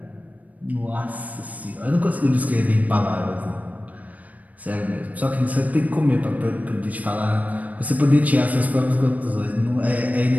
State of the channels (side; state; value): left; late; 0.073 ms